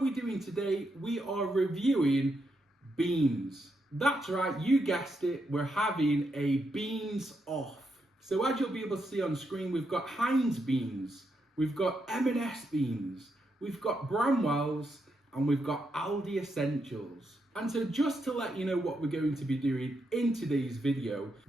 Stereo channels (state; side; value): normal; both; correlation 0.81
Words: doing today? We are reviewing beans. That's right, you guessed it, we're having a beans off. So as you'll be able to see on screen, we've got Heinz Beans, we've got M&S Beans, we've got Bramwells, and we've got Aldi Essentials. And so just to let you know what we're going to be doing in today's video,